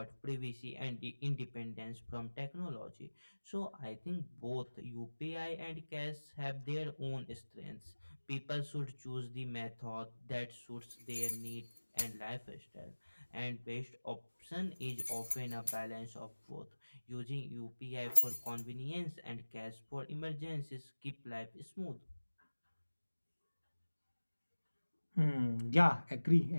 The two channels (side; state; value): both; inverted; correlation -1.00